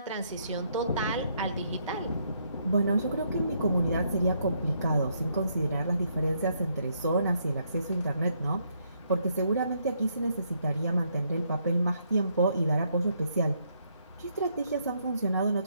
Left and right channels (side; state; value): both; inverted; correlation -0.73